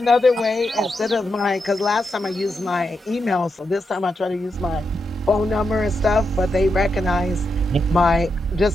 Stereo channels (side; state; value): both; normal; correlation 0.85